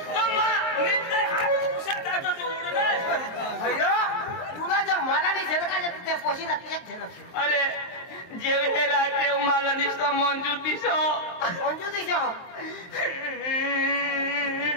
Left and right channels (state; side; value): late; right; 23 ms